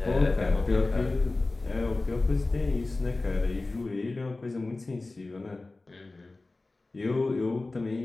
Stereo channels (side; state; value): right; quieter; 3.2 dB